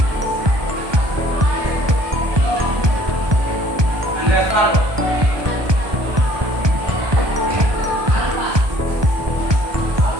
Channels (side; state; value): left; late; 1.2 ms